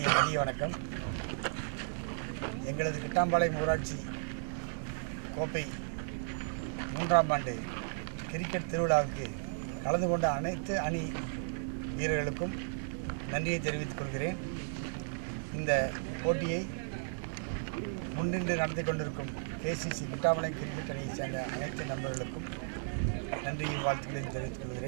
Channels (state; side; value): silent; left; digital silence